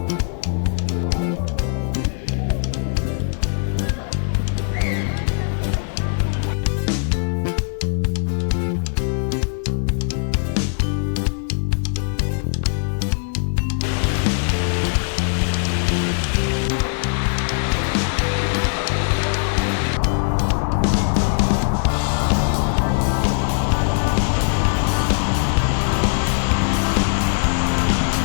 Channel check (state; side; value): silent; right; 65 dB below the other